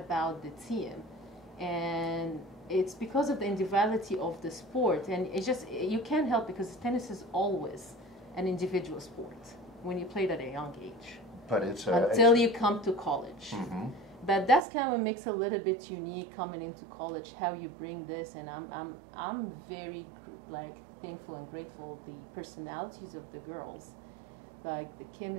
the team. And it's because of the individuality of the sport. And it's just, you can't help, because tennis is always an individual sport when you play it at a young age. But until you come to college. Mm-hmm. But that's kind of what makes it a little bit unique coming into college, how you bring this. And I'm very thankful and grateful the personalities of the girls. Like the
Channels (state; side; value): drops out; left; at 14.7 s